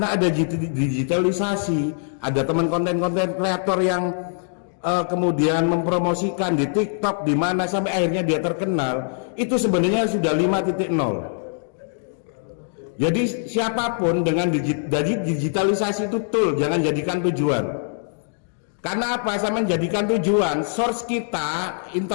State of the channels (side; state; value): right; silent; digital silence